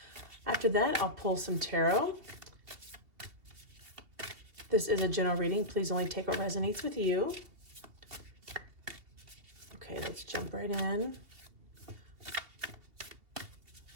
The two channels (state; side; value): late; left; 2.6 ms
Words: After that, I'll pull some tarot. This is a general reading. Please only take what resonates with you. Okay, let's jump right in.